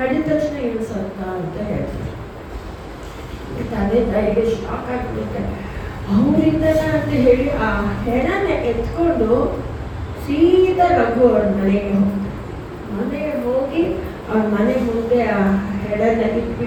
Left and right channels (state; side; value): identical; both; correlation 1.00